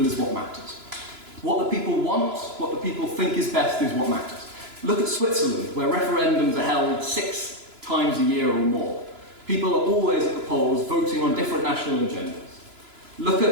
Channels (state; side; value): late; left; 3.0 ms